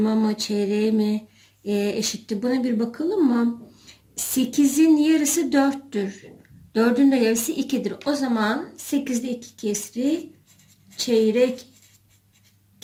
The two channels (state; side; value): identical; both; correlation 1.00